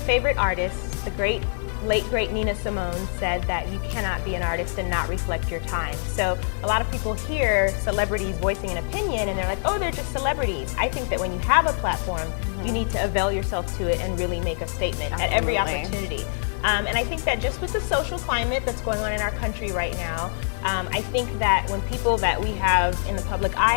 artists, the late great Nina Simone, said that you cannot be an artist and not reflect your time. So a lot of people hear celebrities voicing an opinion and they're like, oh, they're just celebrities. I think that when you have a platform, you need to avail yourself to it and really make a statement at every opportunity. And I think that just with the social climate that's going on in our country right now, I think that when people that we have in the public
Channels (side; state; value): right; silent; digital silence